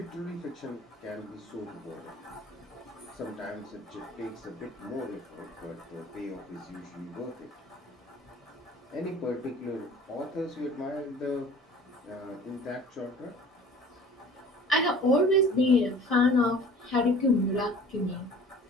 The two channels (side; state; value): both; normal; correlation 0.46